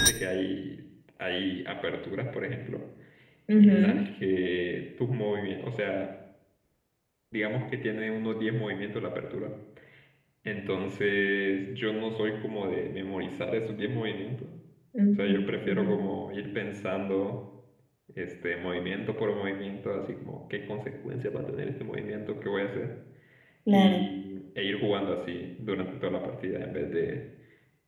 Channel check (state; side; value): identical; both; correlation 1.00